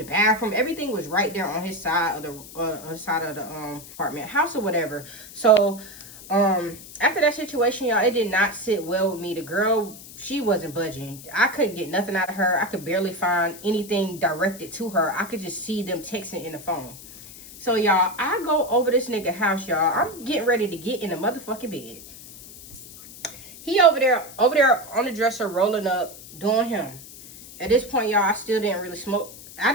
bathroom, everything was right there on his side of the apartment house or whatever. So after that situation, y'all, it did not sit well with me. The girl, she wasn't budging. I couldn't get nothing out of her. I could barely find anything directed to her. I could just see them texting in the phone. So, y'all, I go over this nigga house, y'all. I'm getting ready to get in the motherfucking bed. He over there on the dresser, rolling up, doing him. At this point, y'all, I still didn't really smoke. I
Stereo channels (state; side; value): noise; left; hiss, 16 dB below the sound